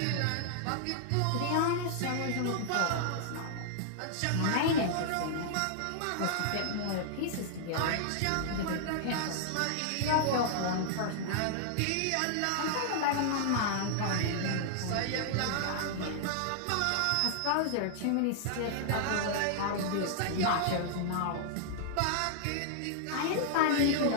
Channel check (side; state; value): both; different; correlation -0.01